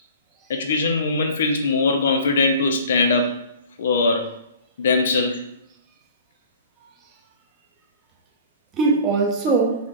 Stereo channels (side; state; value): both; inverted; correlation -0.45